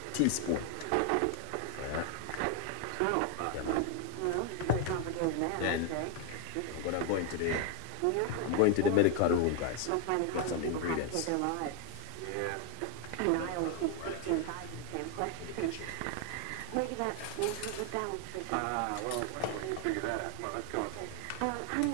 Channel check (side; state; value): both; different; correlation 0.00